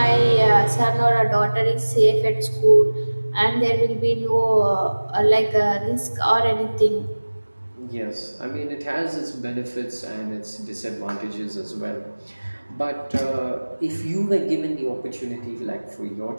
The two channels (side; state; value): both; inverted; correlation -1.00